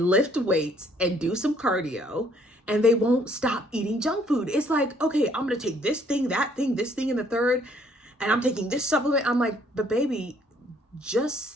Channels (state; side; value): normal; both; correlation 0.64